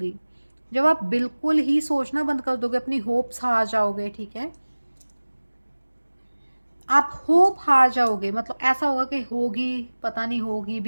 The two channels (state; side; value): inverted; both; correlation -1.00